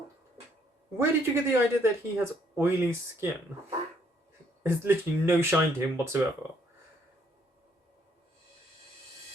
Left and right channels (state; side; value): normal; both; correlation 0.68